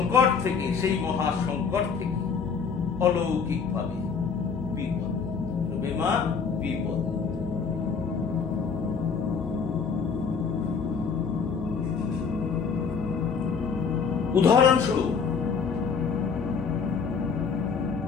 থেকে, সেই মহা সংকট থেকে অলৌকিক ভাবে বিপদ মা, বিপদ। উদাহরণস্বরূপ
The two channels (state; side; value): quieter; right; 5.8 dB